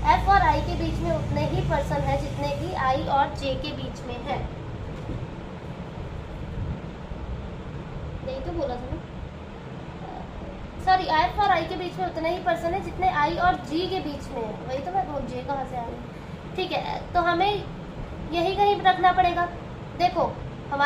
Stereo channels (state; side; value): identical; both; correlation 1.00